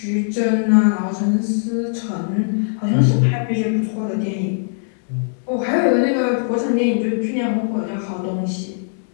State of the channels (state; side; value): silent; right; digital silence